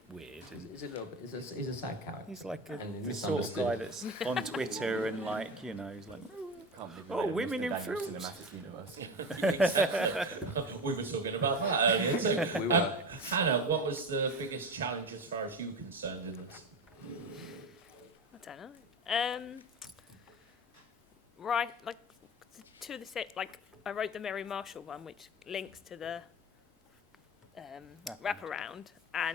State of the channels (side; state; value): both; normal; correlation 0.26